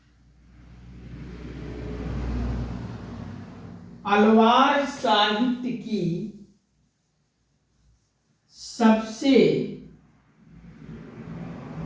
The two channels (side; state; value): both; identical; correlation 1.00